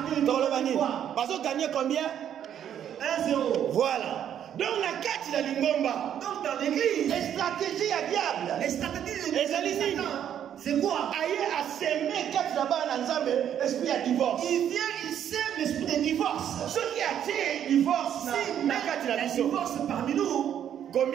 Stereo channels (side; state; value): left; quieter; 9.7 dB